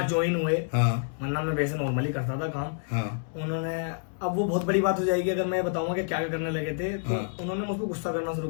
ज्वाइन हुए। वरना मैं वैसे नॉर्मली करता था काम। उन्होंने, अब वो बहुत बड़ी बात हो जाएगी अगर मैं बताऊंगा कि क्या करने लगे थे, तो उन्होंने मुझको गुस्सा करना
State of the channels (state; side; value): silent; right; 59 dB below the other